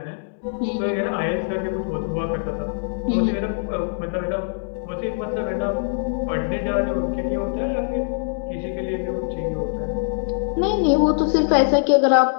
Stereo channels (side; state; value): right; silent; digital silence